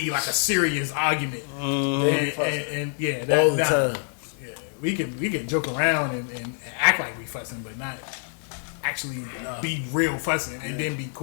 like a serious argument. And yeah, that, All the time. Yeah, we can joke around and act like we fussing, but not actually be real fussing and then be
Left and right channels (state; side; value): silent; right; 61 dB below the other